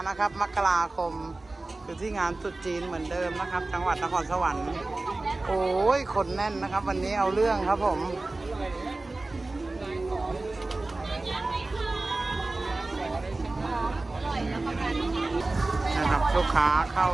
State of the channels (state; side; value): quieter; left; 3.1 dB